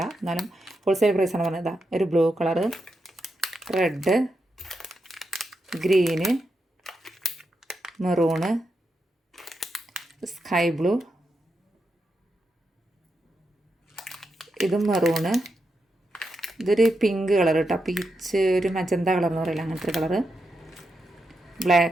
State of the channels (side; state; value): both; normal; correlation 0.86